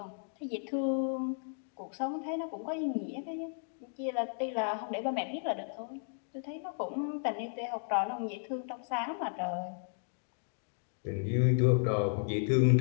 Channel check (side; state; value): right; silent; digital silence